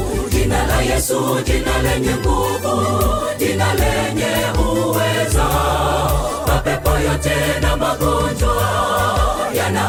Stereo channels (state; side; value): identical; both; correlation 1.00